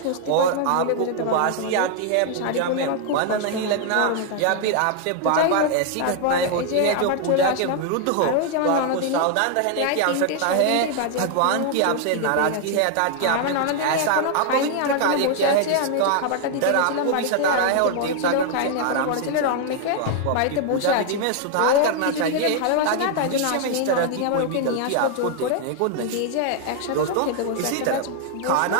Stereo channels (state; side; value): different; both; correlation 0.00